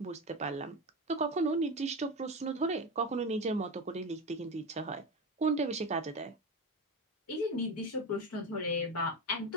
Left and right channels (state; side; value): normal; both; correlation 0.20